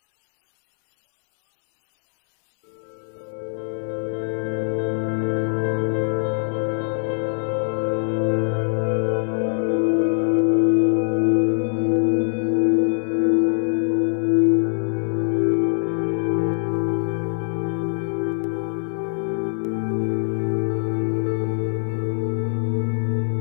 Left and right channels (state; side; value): silent; right; 64 dB below the other